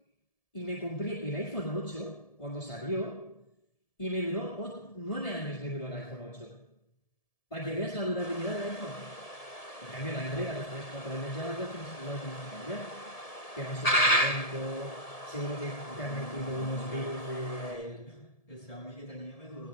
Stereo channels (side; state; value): right; late; 1.7 ms